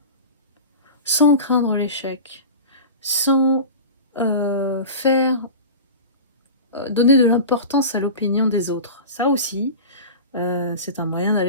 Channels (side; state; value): both; inverted; correlation -0.32